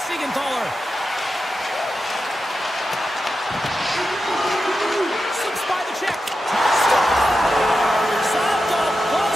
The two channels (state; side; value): normal; both; correlation 0.90